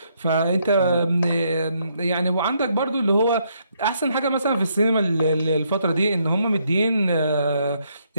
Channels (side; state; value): both; inverted; correlation -0.74